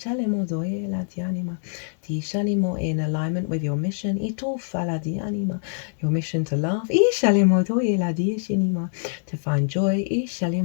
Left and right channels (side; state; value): right; silent; digital silence